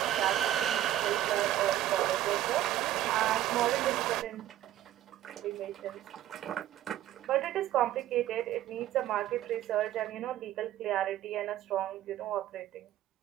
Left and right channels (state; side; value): quieter; left; 13.2 dB